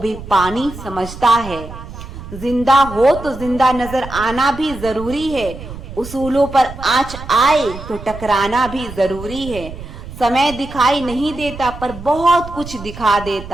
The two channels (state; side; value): noise; right; rumble, 12 dB below the sound